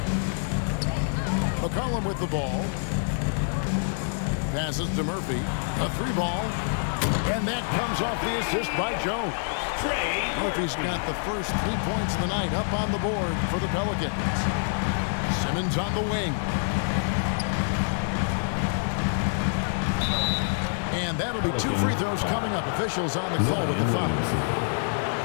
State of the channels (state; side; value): silent; right; digital silence